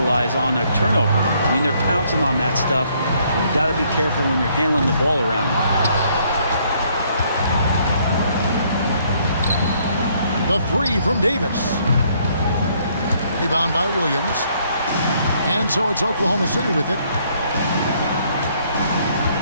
on a turnover. I mean, they're pouncing on that stuff. You got to be careful when you're handling the ball around. The 3 from Davis. Rebound by Williams. And so it's Oklahoma City with it.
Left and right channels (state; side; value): inverted; both; correlation -0.67